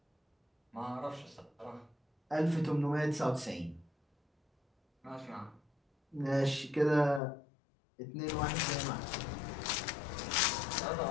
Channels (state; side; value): drops out; right; at 7.2 s